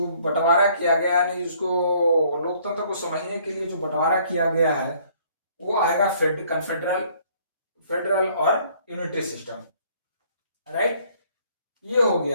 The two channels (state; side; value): inverted; both; correlation -0.61